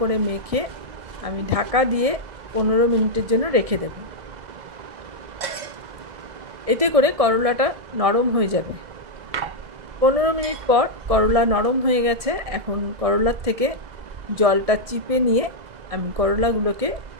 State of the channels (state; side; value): late; left; 1.6 ms